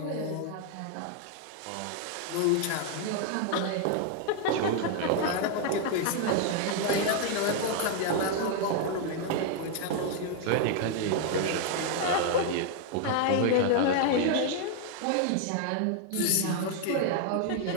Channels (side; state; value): both; different; correlation 0.00